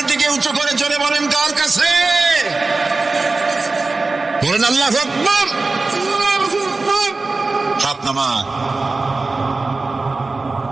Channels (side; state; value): left; quieter; 3.6 dB